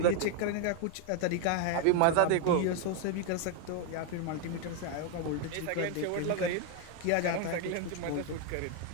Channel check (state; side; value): different; both; correlation 0.01